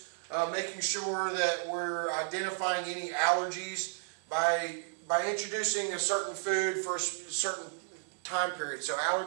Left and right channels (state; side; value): silent; left; 56 dB below the other